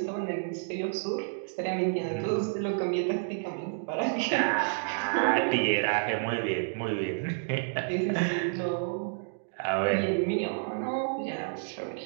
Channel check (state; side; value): silent; left; digital silence